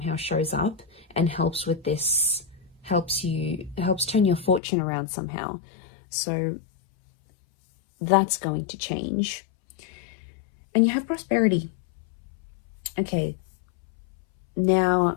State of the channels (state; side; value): drops out; right; at 4.6 s